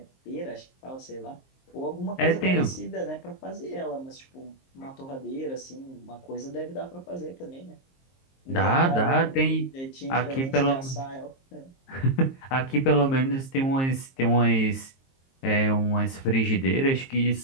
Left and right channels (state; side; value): late; right; 23 ms